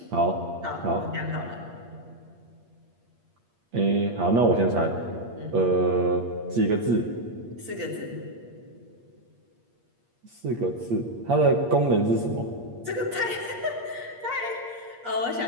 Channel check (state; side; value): late; left; 8.5 ms